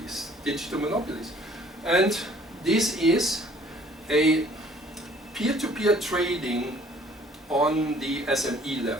digital monopolies. And this is a peer-to-peer trading on the SME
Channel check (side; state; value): both; normal; correlation 0.56